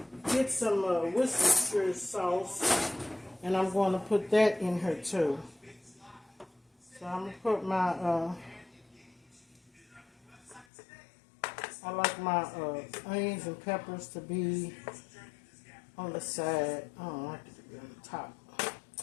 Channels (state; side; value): drops out; right; at 10.7 s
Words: get some Worcestershire sauce, and I'm going to put that in here too. So I'm going to put my, I like my onions and peppers to be on the side. I don't like it to be on the top.